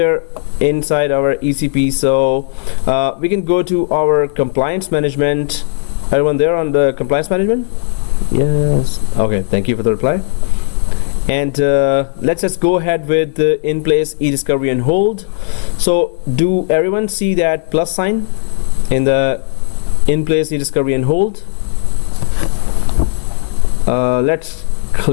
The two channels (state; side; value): silent; right; digital silence